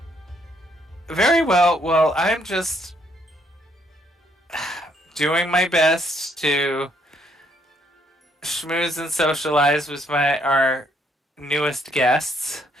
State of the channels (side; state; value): both; normal; correlation 0.70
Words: Very well. Well, I'm just doing my best to schmooze and socialize with our newest guests.